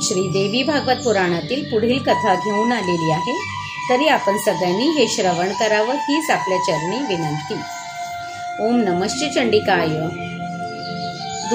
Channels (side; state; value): both; identical; correlation 1.00